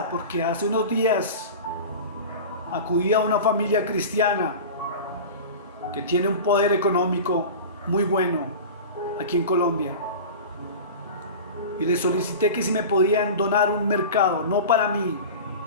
porque hace unos días acudí a una familia cristiana que tiene un poder económico muy bueno aquí en Colombia. Y les solicité que si me podían donar un mercado, no para mí,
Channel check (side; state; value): both; inverted; correlation -0.32